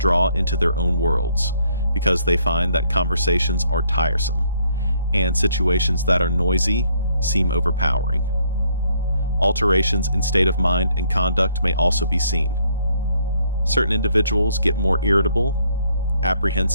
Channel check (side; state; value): both; inverted; correlation -0.69